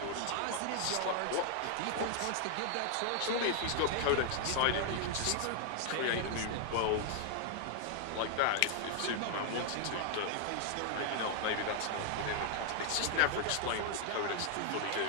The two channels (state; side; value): different; both; correlation 0.00